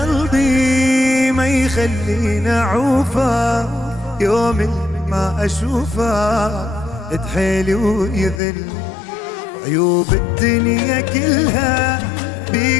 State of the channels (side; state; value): right; drops out; at 8.4 s